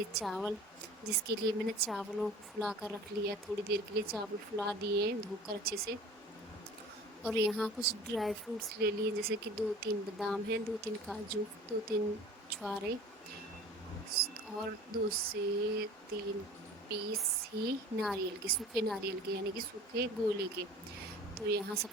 चावल, जिसके लिए मैंने चावलों को फुला कर रख लिया। थोड़ी देर के लिए चावल फुला दिए हैं धोकर अच्छे से। और यहाँ कुछ ड्राई फ्रूट्स ले लिए, जैसे कि 2-3 बादाम हैं, 2-3 काजू, 2-3 छुहारे और 2 से 3 पीस ही नारियल के, सूखे नारियल के, यानी कि सूखे गोले के। तो यहाँ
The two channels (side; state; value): both; normal; correlation 0.43